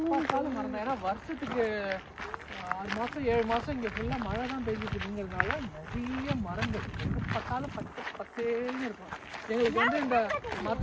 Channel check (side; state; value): both; identical; correlation 1.00